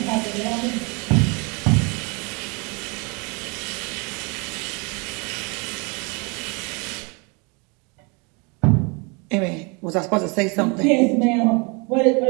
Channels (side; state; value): left; quieter; 31.0 dB